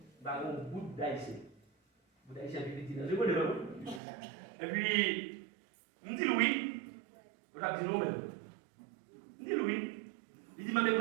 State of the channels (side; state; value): left; drops out; at 4.0 s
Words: un bout d'haïtien. Bout d'haïtien petit, je connais pas. Et puis, on dit oui. On a dit non, même. On dit oui. Il dit, mais je vais